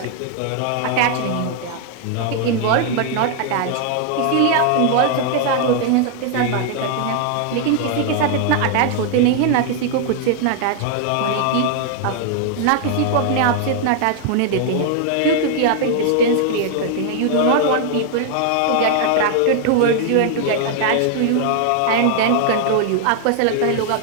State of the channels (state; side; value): different; both; correlation 0.00